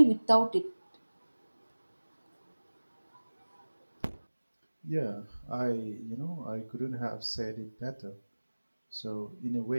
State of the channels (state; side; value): inverted; both; correlation -1.00